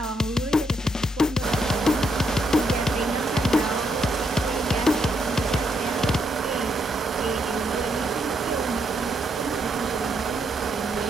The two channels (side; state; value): both; normal; correlation 0.76